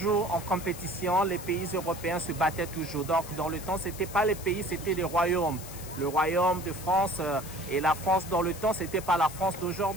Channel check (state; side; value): noise; left; hiss, 14 dB below the sound